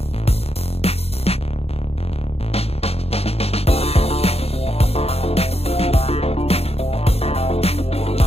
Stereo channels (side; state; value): right; late; 0.29 ms